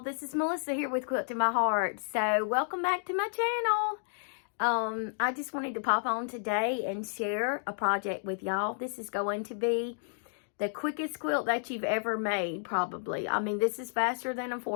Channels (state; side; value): silent; right; digital silence